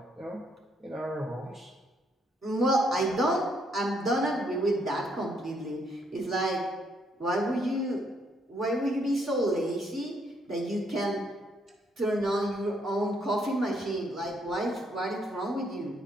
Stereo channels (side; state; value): both; normal; correlation 0.72